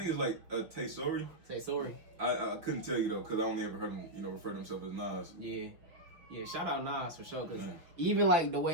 it's like Tay Sorry. Say sorry. I couldn't tell you though, cause I only ever heard him, refer to himself as Nas. Yeah, shout out Nas for sure, cause even like the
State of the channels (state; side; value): late; left; 5.6 ms